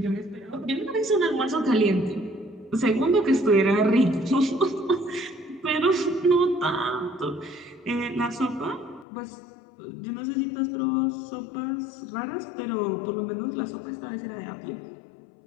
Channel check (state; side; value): drops out; right; at 9.1 s